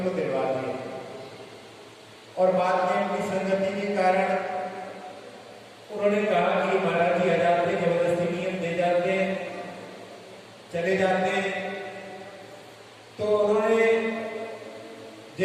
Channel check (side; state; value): both; identical; correlation 1.00